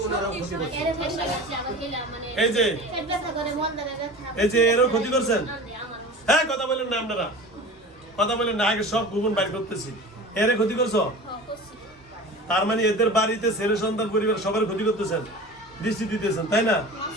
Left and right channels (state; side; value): normal; both; correlation 0.36